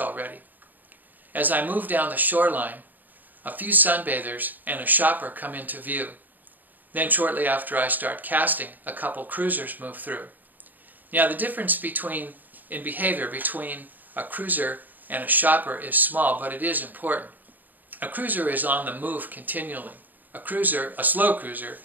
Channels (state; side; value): late; left; 0.086 ms